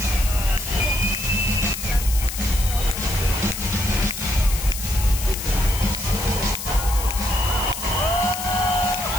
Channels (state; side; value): noise; left; hiss, 7 dB below the sound